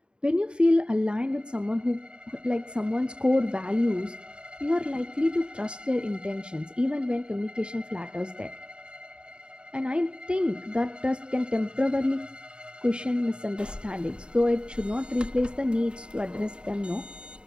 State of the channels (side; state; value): left; late; 0.052 ms